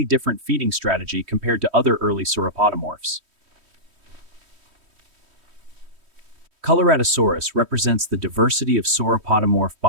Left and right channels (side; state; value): left; late; 3.1 ms